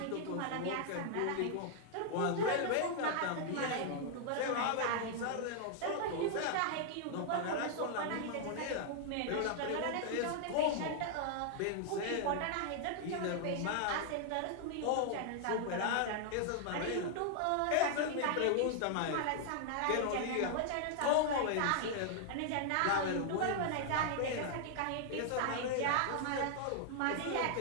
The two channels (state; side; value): different; both; correlation 0.00